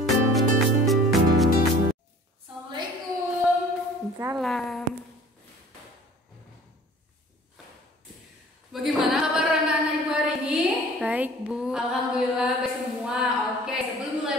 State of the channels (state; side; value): normal; both; correlation 0.48